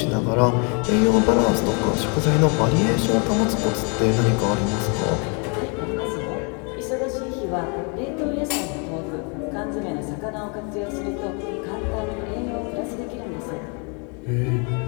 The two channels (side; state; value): right; quieter; 34.8 dB